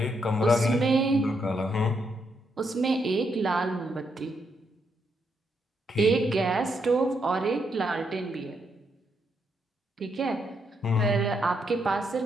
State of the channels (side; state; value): both; normal; correlation 0.78